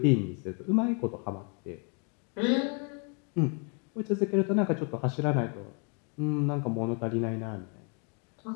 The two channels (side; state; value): right; quieter; 36.8 dB